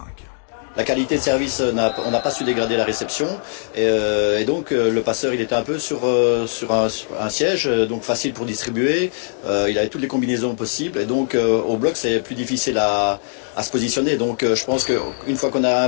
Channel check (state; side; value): silent; right; digital silence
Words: La qualité de service, on n'a pas su dégrader la réception. Et donc le passeur, il était un peu sur un siège, donc facile pour distribuer. Il avait toutes les combinaisons possibles. Et donc au bloc, c'est plus difficile à se positionner. Donc je pense qu'une fois qu'on a